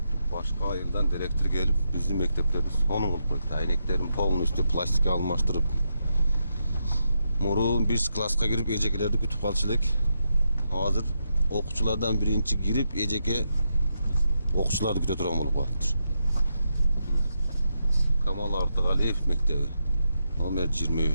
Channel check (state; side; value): inverted; both; correlation -0.83